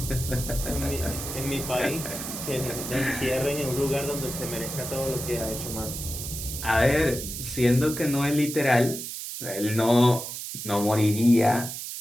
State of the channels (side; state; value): right; noise; hiss, 7 dB below the sound